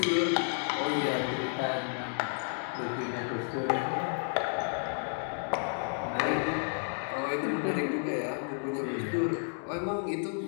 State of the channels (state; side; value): silent; right; 57 dB below the other